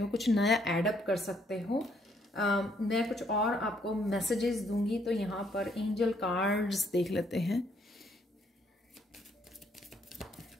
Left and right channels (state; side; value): normal; both; correlation 0.69